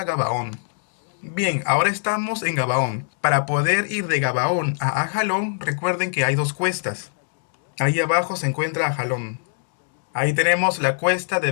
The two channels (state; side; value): silent; right; digital silence